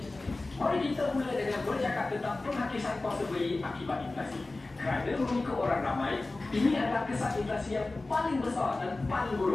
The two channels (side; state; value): right; quieter; 3.2 dB